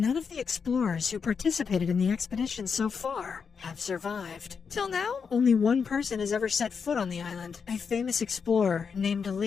of the explorers who participated in the expedition so far have survived. Till now, only one person has ever set foot on the island, a famous explorer named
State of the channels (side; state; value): right; quieter; 6.0 dB